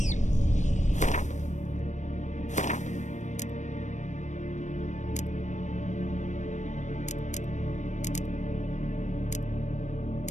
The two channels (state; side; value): late; right; 0.35 ms